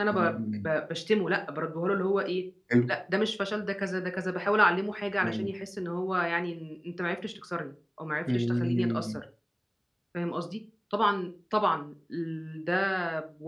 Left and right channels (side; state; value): both; identical; correlation 1.00